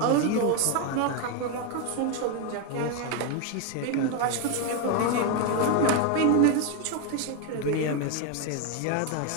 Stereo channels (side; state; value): both; different; correlation 0.01